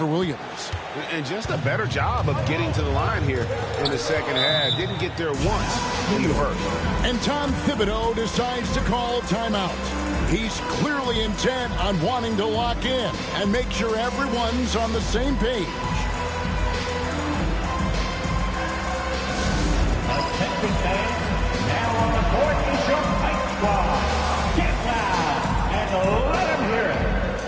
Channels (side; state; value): both; identical; correlation 1.00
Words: Williams. And just a better job of getting to the line here in the second half. Didn't get there once. He hurt. And Tom Thibodeau decides to call timeout. He's clearly intent on wanting to lock in and make sure everyone's on the same page. Attention fans, now on the court is your fight squad. Get loud and let them hear it.